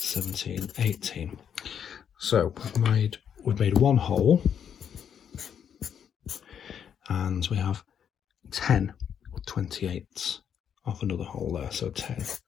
18. So we've made one whole, and we have 10 28s of another whole there. So 10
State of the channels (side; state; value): right; quieter; 8.4 dB